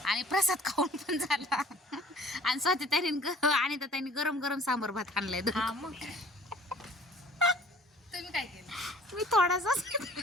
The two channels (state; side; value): normal; both; correlation 0.51